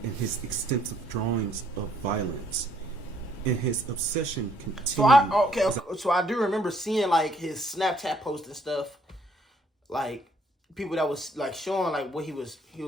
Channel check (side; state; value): both; normal; correlation 0.66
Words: in his extensive drawings of violence, and his obsession continued. So I do remember seeing like his Snapchat posts and stuff, like people that was like showing like what he was